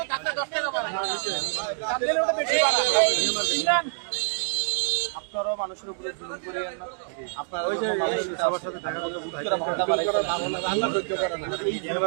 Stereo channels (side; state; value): left; silent; 61 dB below the other